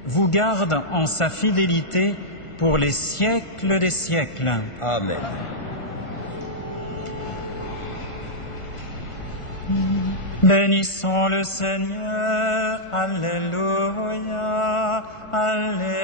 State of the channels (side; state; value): right; late; 1.5 ms